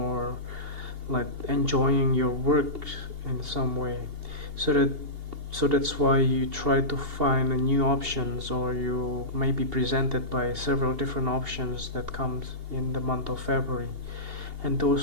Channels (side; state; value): left; late; 2.8 ms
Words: like enjoying your work in some way. So that's why you try to find new options, or you may be presented by several different options that comes in the month of February, and